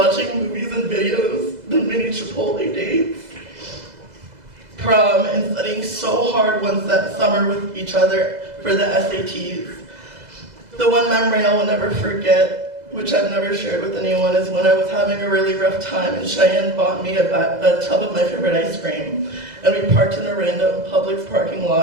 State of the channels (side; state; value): left; late; 2.0 ms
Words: movies and videos, the mini Chipotle dates, prom, and studying so hard one summer with each other for the SATs. The one memory I will never forget, which I've never shared with anyone, is when I was having a really rough time and Cheyenne bought me a tub of my favorite ice cream. And we parked in a random Publix parking